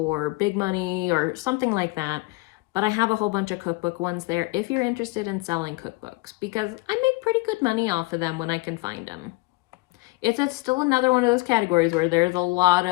big money or something like that. But I have a whole bunch of cookbook ones there if you're interested in selling cookbooks, because I make pretty good money off of them when I can find them. It's still another one of those categories where there's a lot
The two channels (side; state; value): right; quieter; 24.1 dB